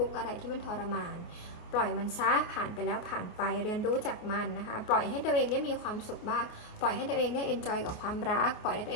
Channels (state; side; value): late; right; 28 ms